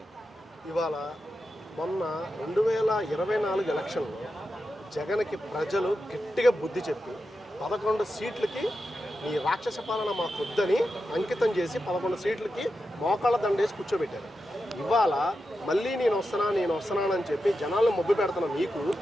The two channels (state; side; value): normal; both; correlation 0.89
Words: ఇవాళ మొన్న 2024 ఎలక్షన్లో జగన్కి ప్రజలు గట్టిగా బుద్ధి చెప్పి 11 సీట్లకి ఈ రాక్షస పాలన మాకొద్దని అంకితం చేసి 11 సీట్లకి మోకాళ్ళ దండేసి కూర్చోబెట్టారు. ఇవాళ మళ్ళీ నేను వస్తున్నానని చెప్పి జనాలను మొబ్బు పెడుతున్న మీకు,